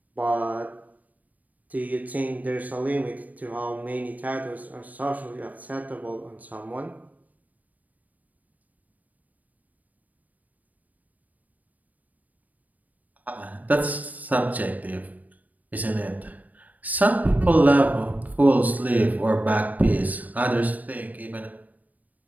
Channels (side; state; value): left; late; 0.076 ms